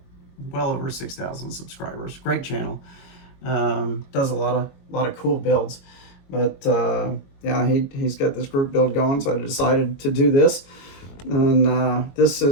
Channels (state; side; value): late; right; 22 ms